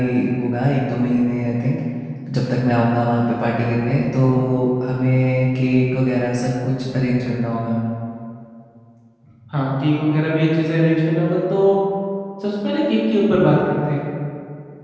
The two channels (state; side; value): identical; both; correlation 1.00